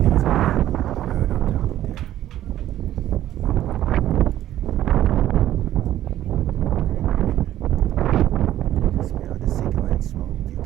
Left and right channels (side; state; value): left; quieter; 12.8 dB